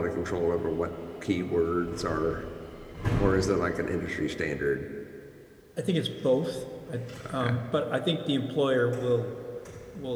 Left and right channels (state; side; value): identical; both; correlation 1.00